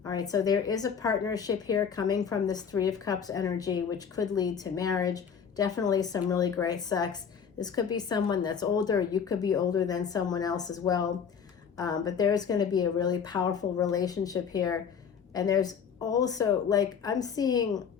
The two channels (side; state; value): right; quieter; 7.0 dB